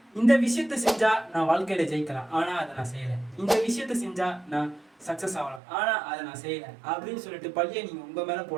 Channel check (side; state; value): left; drops out; at 5.6 s